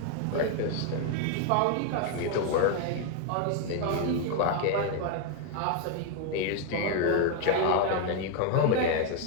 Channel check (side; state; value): both; different; correlation 0.01